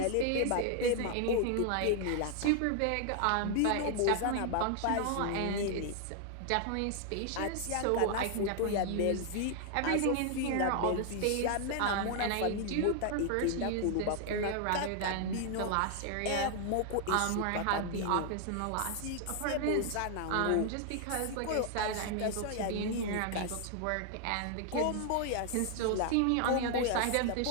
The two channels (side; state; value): both; different; correlation 0.00